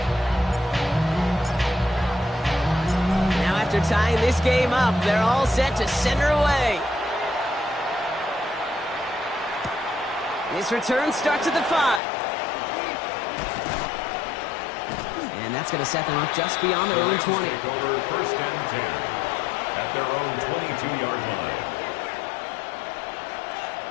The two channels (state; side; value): drops out; right; at 12.0 s